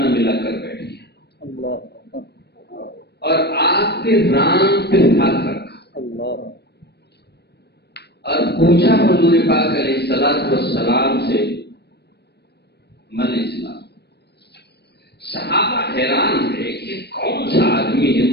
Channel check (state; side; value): late; right; 0.48 ms